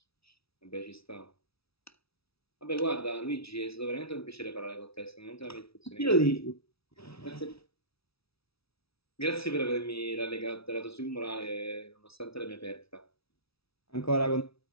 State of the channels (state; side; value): late; right; 0.77 ms